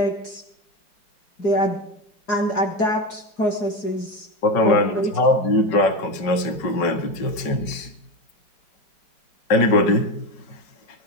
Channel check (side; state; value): right; late; 5.3 ms